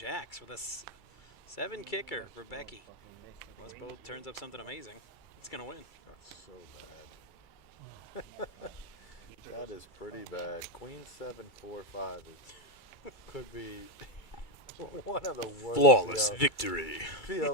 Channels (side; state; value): right; late; 2.3 ms